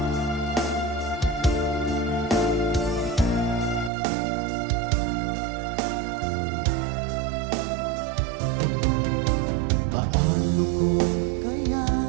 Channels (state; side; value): drops out; left; at 3.9 s